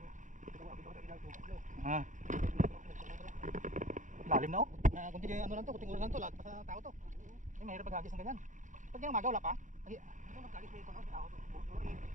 Lalim na, oh. Kunti ano lang to, kunting oras lang to, lahat pa sa tao to. Ay, mahirap maghagis ng ganyan. Pag yung umaga wala pa.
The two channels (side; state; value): left; late; 0.36 ms